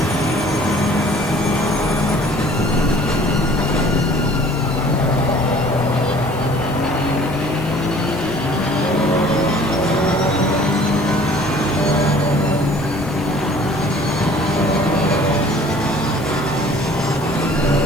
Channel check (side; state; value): left; noise; hiss, 20 dB below the sound